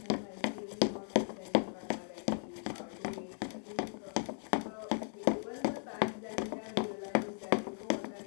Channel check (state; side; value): silent; right; 53 dB below the other